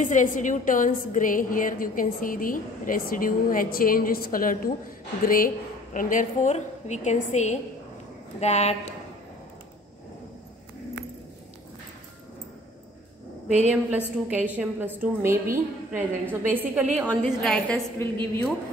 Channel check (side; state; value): both; normal; correlation 0.51